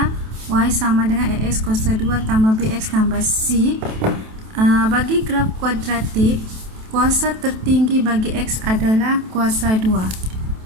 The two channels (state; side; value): late; left; 27 ms